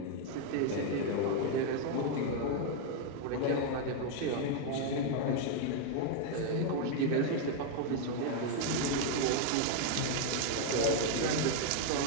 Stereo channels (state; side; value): different; both; correlation 0.00